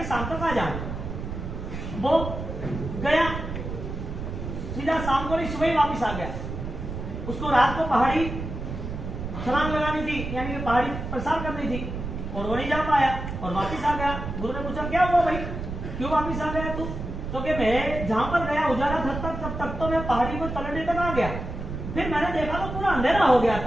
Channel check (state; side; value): noise; right; rumble, 6 dB below the sound